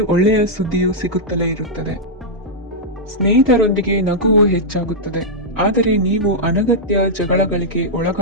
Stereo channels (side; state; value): both; normal; correlation -0.07